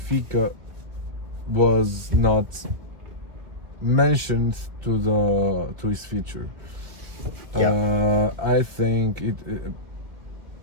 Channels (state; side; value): late; left; 2.2 ms